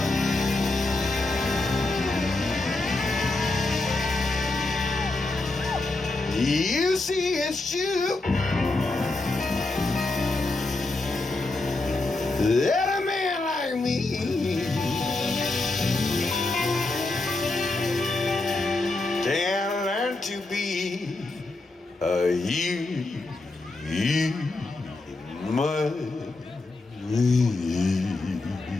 You see, it's true that a man like me can learn to be a human.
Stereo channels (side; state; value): right; quieter; 3.1 dB